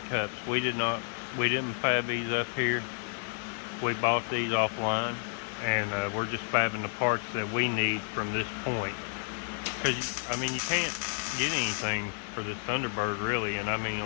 cups. We didn't fab these up here. We bought these offline, and we're just fabbing the parts that we need from this point. Because, I mean, you can't get anything for this Thunderbird, really. And, I mean,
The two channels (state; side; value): silent; right; 57 dB below the other